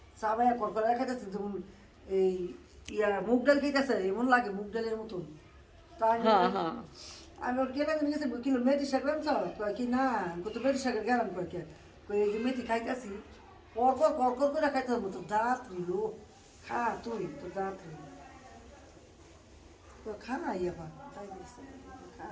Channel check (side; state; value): both; identical; correlation 1.00